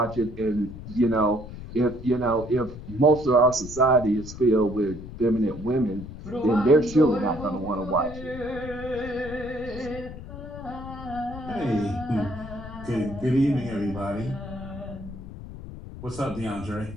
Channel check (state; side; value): noise; left; rumble, 12 dB below the sound